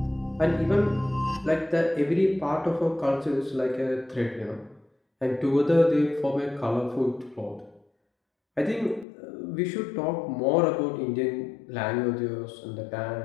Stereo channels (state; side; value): drops out; right; at 9.1 s